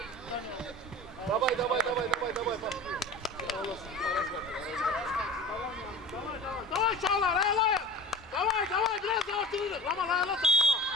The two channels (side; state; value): both; normal; correlation 0.36